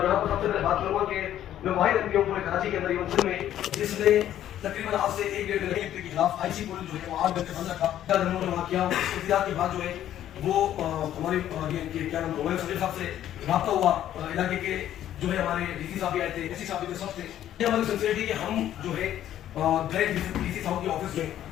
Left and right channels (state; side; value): quieter; right; 11.7 dB